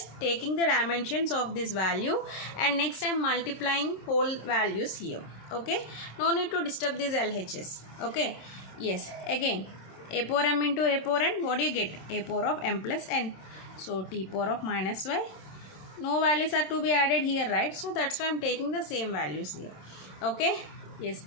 taking the dimensions of this value and next I am multiplying whole values here. Okay. No need to disturb these LHS. Okay. Yes. Again, a power m into a power n, what do you get? A power of m plus n. So t power of minus y. No values are to be added here, right? So that's why I am taking the same values here. Okay. Yes,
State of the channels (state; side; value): late; right; 26 ms